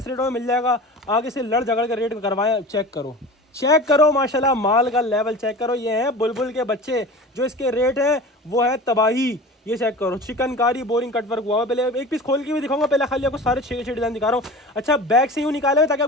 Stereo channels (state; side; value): normal; both; correlation 0.35